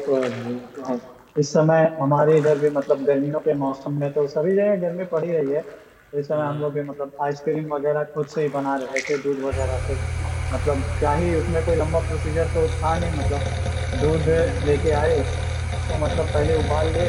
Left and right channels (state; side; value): identical; both; correlation 1.00